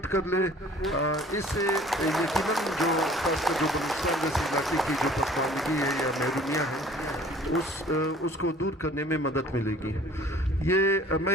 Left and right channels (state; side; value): normal; both; correlation 0.51